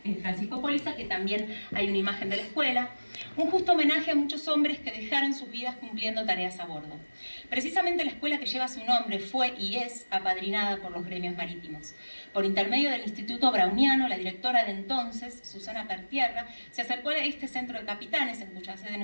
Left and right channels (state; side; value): inverted; both; correlation -1.00